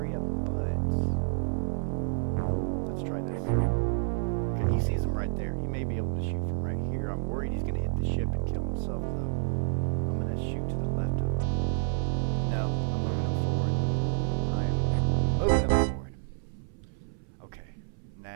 but let's try this. Okay, he sees him right there. He may be able to shoot from right here. I'm worried he's going to hit the ship and kill himself, though. I'm going to shoot to the left of him. No, I'm moving him forward. I am moving him forward. Okay,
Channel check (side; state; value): left; silent; 58 dB below the other